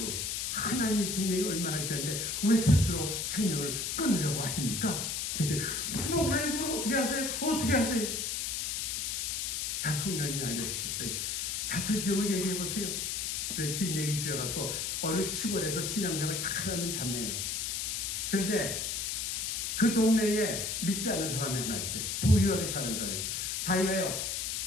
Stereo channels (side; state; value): left; noise; hiss, 1 dB below the sound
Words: 하나님의 생명이 얼마나 귀한데 왜 스스로 생명을 끊으려고 하십니까? 근데 목사님 그걸 어떻게 하세요? 다 성령이 알려주셨어요. 자초지종을 얘기해보세요. 긴 얘기 주셔갖고 어느 시골에서 신앙생활을 잘하는 자매예요. 그런데 그 동네에 믿지 않는 사람이 하나 있어요. 부유하게 사는 사람이에요. 자기가요